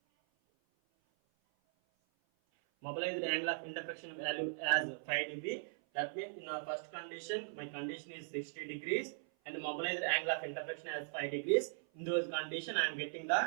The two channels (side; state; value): left; silent; 52 dB below the other